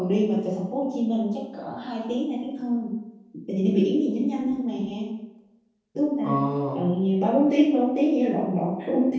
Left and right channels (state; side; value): identical; both; correlation 1.00